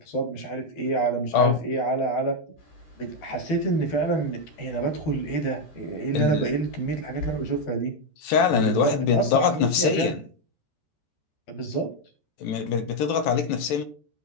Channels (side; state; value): right; late; 13 ms